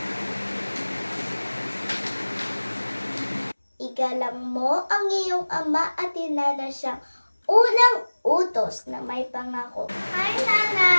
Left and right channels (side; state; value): both; inverted; correlation -1.00